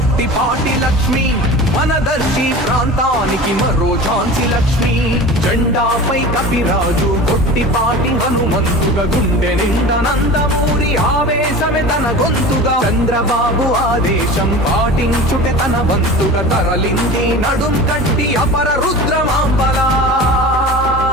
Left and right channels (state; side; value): normal; both; correlation 0.35